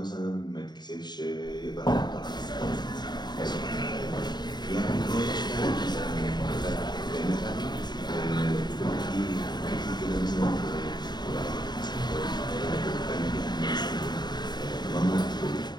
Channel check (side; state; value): right; late; 0.21 ms